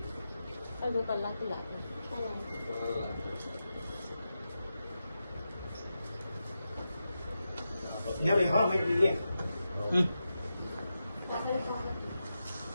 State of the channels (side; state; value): both; inverted; correlation -0.90